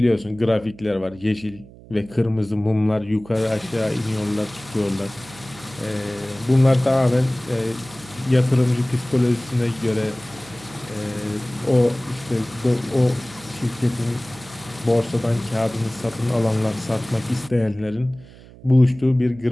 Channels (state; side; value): noise; right; hum, 21 dB below the sound